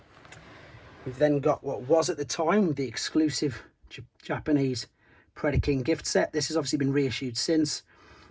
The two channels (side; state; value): both; identical; correlation 1.00